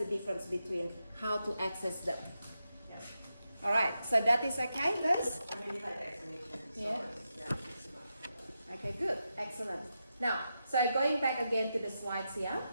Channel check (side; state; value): both; inverted; correlation -0.87